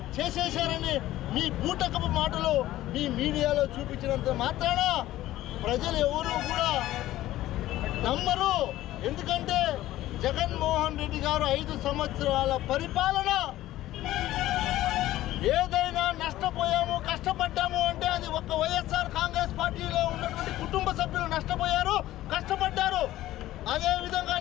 చేసేశారని మీ బూటకపు మాటలు మీ మీడియాలో చూపించినంత మాత్రాన ప్రజలు ఎవరు కూడా నమ్మరు. ఎందుకంటే జగన్మోహన్ రెడ్డి గారు 5 సంవత్సరాల పరిపాలన ఏదైనా నష్టపోయాము కష్టపడ్డాము అంటే అది ఒక్క వైఎస్ఆర్ కాంగ్రెస్ పార్టీలో ఉన్నటువంటి కుటుంబ సభ్యులు నష్టపోయారు, కష్టపడ్డారు. అదేవిధంగా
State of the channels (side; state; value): right; quieter; 15.0 dB